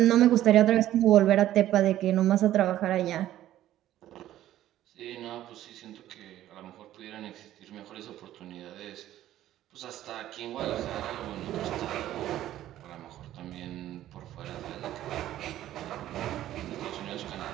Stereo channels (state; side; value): quieter; left; 13.2 dB